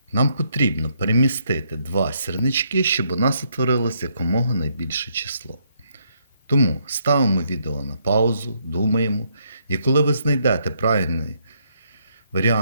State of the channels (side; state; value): both; inverted; correlation -0.74